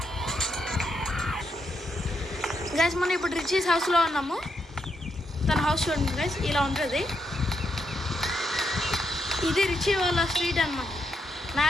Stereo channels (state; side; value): normal; both; correlation 0.81